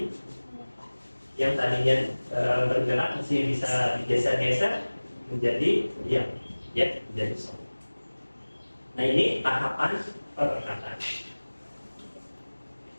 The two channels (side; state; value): both; inverted; correlation -1.00